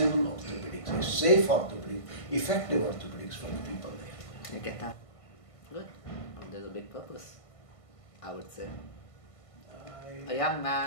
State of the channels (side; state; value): right; late; 1.5 ms